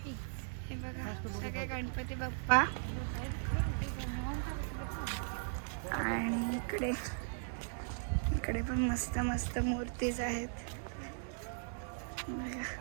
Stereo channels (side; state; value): left; silent; digital silence